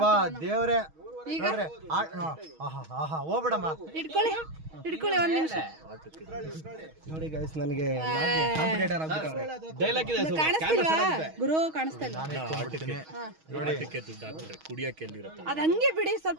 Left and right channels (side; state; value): left; late; 6.3 ms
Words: ದೇವ್ರೆ, ಹೋಗ್ಬಿಡಮ್ಮ. ಇಟ್ಕೊಳ್ಳಿ ಒಂದ್ ನಿಮಿಷ. ನೋಡಿ ಗೈಸ್, ನನಗೆ ಕಾಣಿಸ್ತಿಲ್ವಾ ಗುರು? ಕಾಣಿಸ್ತಾ ಇಲ್ಲ. ಅದ್ ಹಂಗೆ ಬಿಡಿ,